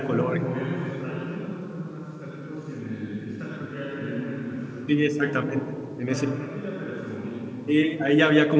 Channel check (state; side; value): identical; both; correlation 1.00